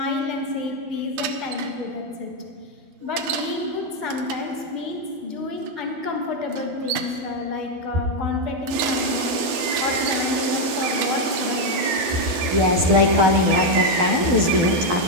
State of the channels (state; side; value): late; left; 12 ms